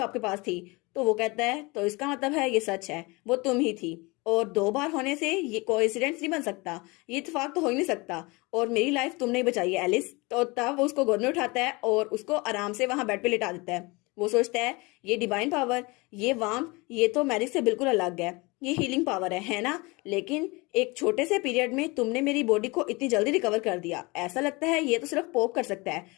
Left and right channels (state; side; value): quieter; right; 25.4 dB